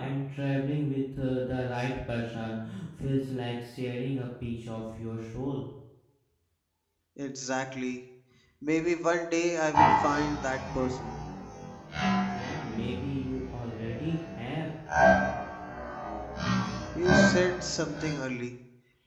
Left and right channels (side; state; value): both; identical; correlation 1.00